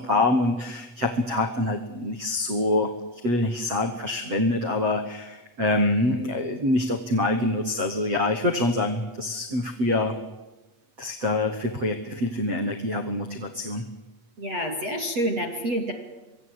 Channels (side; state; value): left; late; 8.3 ms